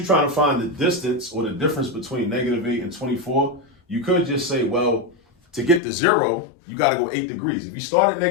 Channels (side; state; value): right; drops out; at 5.8 s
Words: trying to find the distance or the difference between -8 and 24, you could just say, well, to get to 0, you got to go 8 degrees. If you start at